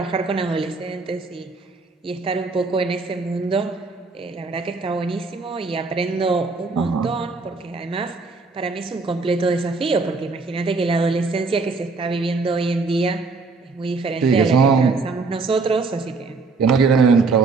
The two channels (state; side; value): quieter; left; 4.1 dB